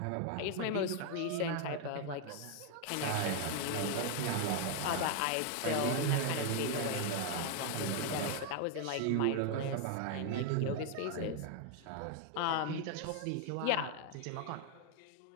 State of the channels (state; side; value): different; both; correlation 0.00